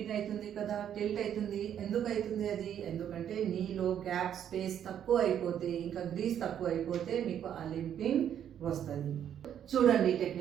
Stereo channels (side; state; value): left; quieter; 9.6 dB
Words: అవుతుంది కదా, టిల్ట్ అవుతుంది. ఎందుకు అవుతుంది అది? ఎందుకంటే నీలో గ్యాప్ స్పేస్ తక్కువ అయిపోతే, ఇంకా గ్రీస్ తక్కువ అయిపోతే మీకు ఆ లింపింగ్ వస్తుంది. చూడండి